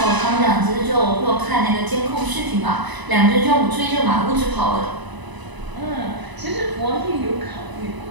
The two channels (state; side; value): late; left; 1.0 ms